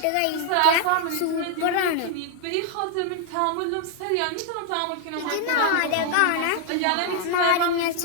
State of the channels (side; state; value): both; different; correlation 0.00